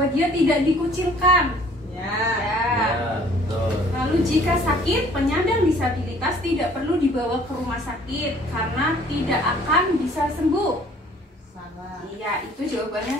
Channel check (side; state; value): both; normal; correlation 0.55